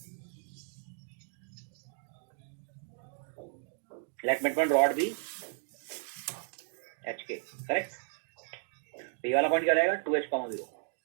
Let mid point rod be H K, correct. तो ये वाला पॉइंट क्या रहेगा, 2h, 0,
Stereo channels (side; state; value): left; silent; digital silence